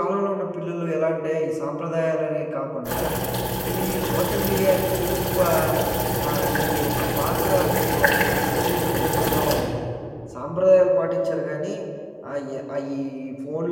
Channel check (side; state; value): both; identical; correlation 1.00